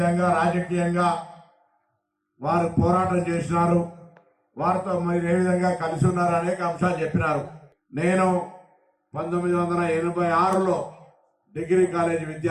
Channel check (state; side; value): identical; both; correlation 1.00